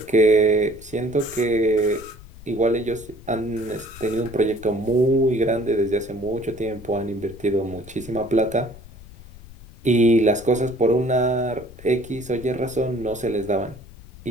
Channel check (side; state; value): left; noise; rumble, 19 dB below the sound